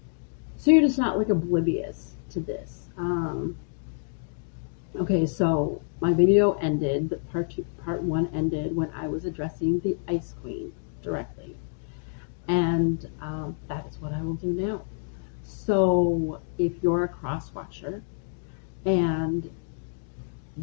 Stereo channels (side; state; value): right; silent; digital silence